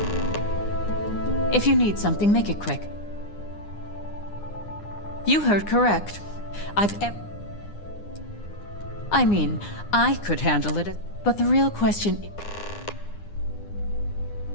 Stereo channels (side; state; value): right; late; 9.8 ms